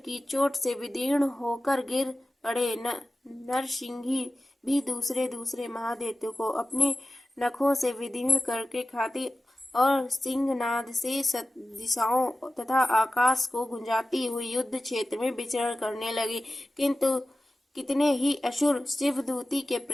चोट से विदीर्ण होकर गिर पड़े। नरसिंही भी दूसरे महादैत्यों को अपने नखों से विदीर्ण करके खाती और सिंहनाद से दिशाओं तथा आकाश को गुंजाती हुई युद्ध क्षेत्र में विचरण करने लगी। किंतु कितने ही असुर शिवदूती के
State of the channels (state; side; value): normal; both; correlation 0.95